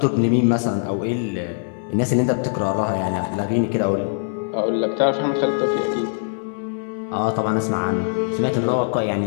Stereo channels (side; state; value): right; silent; digital silence